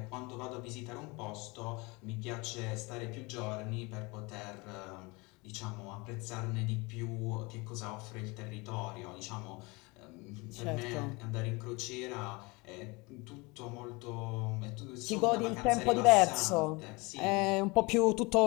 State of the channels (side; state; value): right; quieter; 25.9 dB